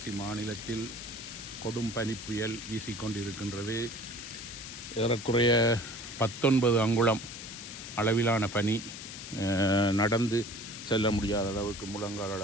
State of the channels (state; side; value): noise; left; hiss, 10 dB below the sound